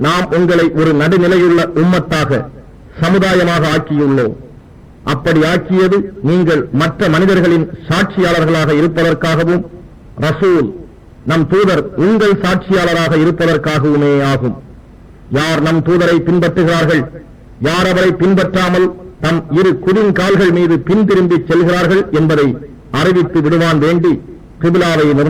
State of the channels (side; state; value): both; identical; correlation 1.00